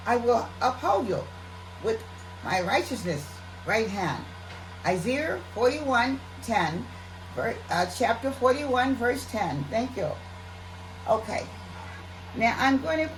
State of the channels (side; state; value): both; identical; correlation 1.00